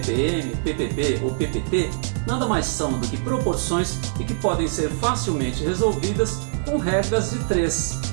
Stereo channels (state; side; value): silent; left; digital silence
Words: ppb ou ppt, nada mais são do que proporções e que podem ser facilmente resolvidas com regras de